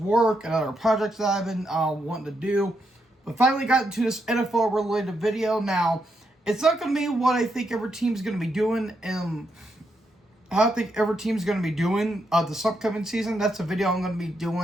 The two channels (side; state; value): both; normal; correlation 0.81